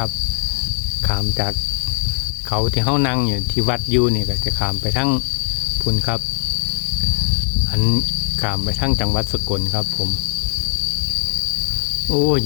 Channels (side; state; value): right; silent; digital silence